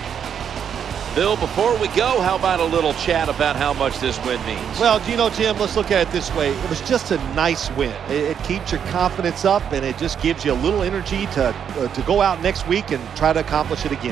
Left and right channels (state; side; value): quieter; left; 8.1 dB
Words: Bill, before we go, how about a little chat about how much this win means? Well, you know, Jim, let's look at it this way. It was just a nice win. It keeps your confidence up, and it just gives you a little energy to go out next week and try to accomplish it